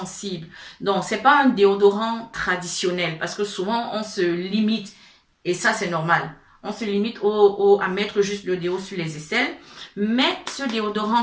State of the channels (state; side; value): identical; both; correlation 1.00